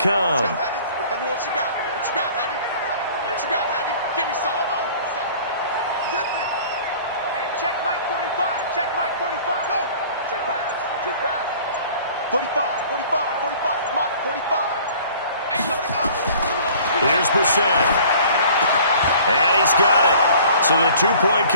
Let's go, Heavy. Heavy, what you got? Heavy? What you got, Heavy? Give me some. Zip it. Hey, check Mike 45. Go. Check pass. 45, Mike, 45. Hey, let it go. Here's Brissett. And he's got it. So the 2-point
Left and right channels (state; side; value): inverted; both; correlation -0.49